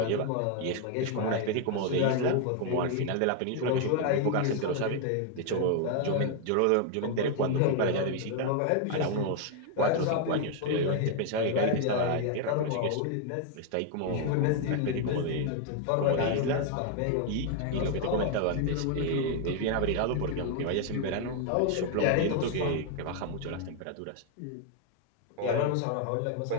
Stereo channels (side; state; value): both; different; correlation 0.00